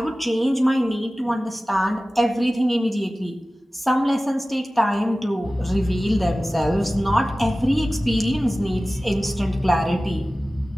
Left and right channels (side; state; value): both; normal; correlation 0.97